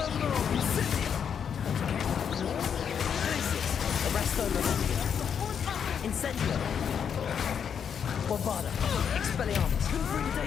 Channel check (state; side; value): quieter; right; 7.6 dB